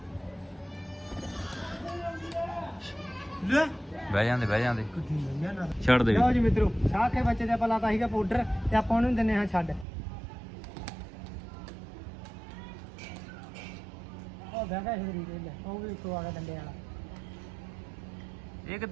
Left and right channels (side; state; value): left; drops out; at 9.9 s